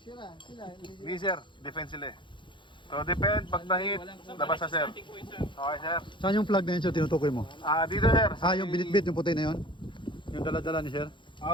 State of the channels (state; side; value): late; right; 0.23 ms